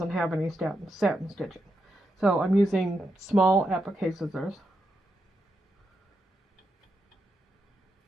have any satin stitching. So I'm using small applique scissors.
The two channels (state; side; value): normal; both; correlation 0.84